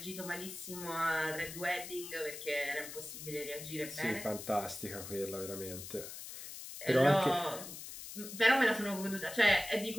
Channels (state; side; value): noise; left; hiss, 10 dB below the sound